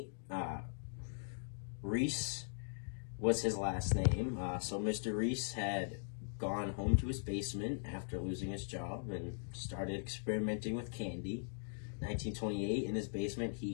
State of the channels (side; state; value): right; silent; digital silence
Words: Reese was his last name. So Mr. Reese had gone home to his basement after losing his job and started experimenting with candy. 1928, in his basement,